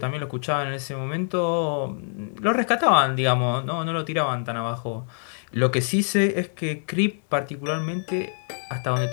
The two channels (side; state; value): right; silent; digital silence